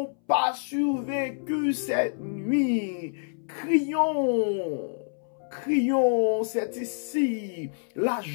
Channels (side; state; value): right; silent; 60 dB below the other